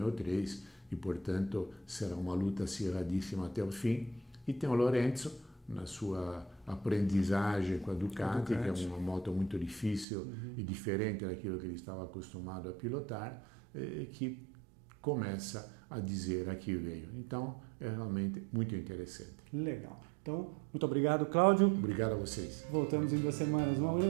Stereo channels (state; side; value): drops out; left; at 10.1 s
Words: 3, e, portanto, será uma luta acirradíssima até o fim. E tem o Lorenzo, na sua aprendizagem com a Ducati, que é uma moto muito difícil e diferente daquilo que ele estava acostumado a pilotar, que começa a dizer a que veio. Então, é realmente muito interessante. Legal. Então, muito obrigado, Cláudio. Obrigado a vocês. Voltamos em 2 semanas. Um